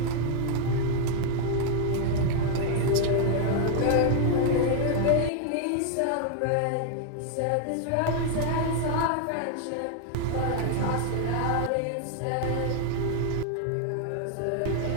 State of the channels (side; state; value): both; different; correlation 0.00